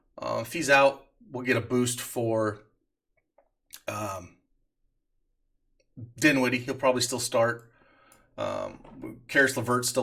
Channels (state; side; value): identical; both; correlation 1.00